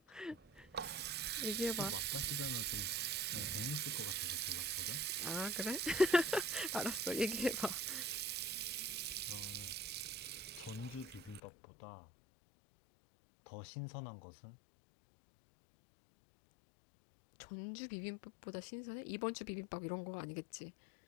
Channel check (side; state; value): right; drops out; at 11.4 s